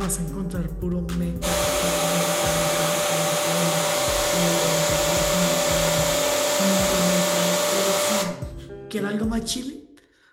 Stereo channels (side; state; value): both; identical; correlation 1.00